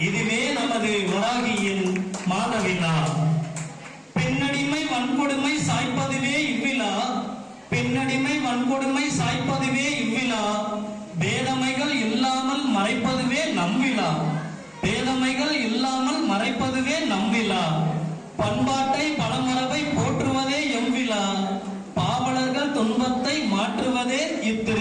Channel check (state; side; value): identical; both; correlation 1.00